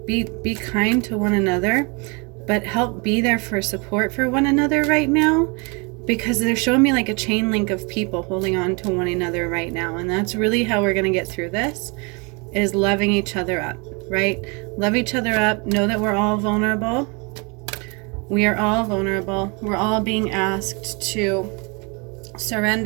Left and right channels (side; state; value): left; quieter; 31.4 dB